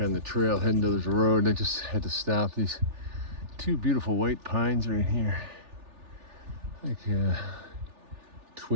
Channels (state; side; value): late; left; 3.4 ms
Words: the trail, heading to the road. I just had to stop. These two beautiful white pines right here, like